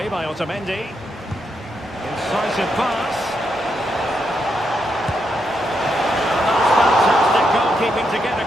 by Otamendi. Incisive pass. That's fantastic goalkeeping to get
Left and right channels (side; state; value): both; normal; correlation 0.81